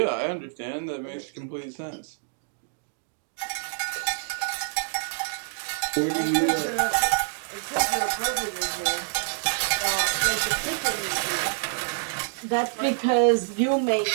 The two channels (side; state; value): left; silent; digital silence